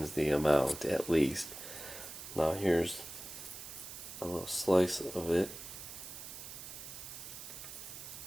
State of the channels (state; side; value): noise; right; hiss, 11 dB below the sound